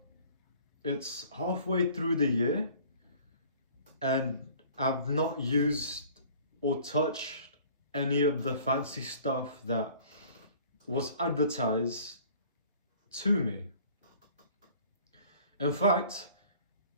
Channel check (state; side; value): inverted; both; correlation -0.51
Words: it's halfway through the year and I've not used or touched any of the fancy stuff that was advertised to me. In fact,